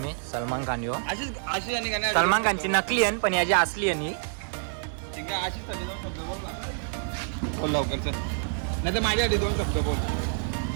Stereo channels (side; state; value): left; silent; digital silence